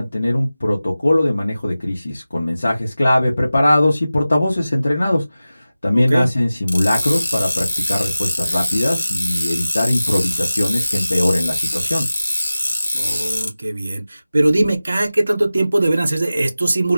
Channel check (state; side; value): inverted; both; correlation -0.96